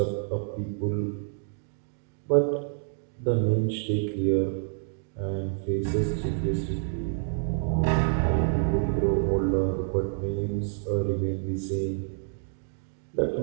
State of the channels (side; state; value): left; silent; digital silence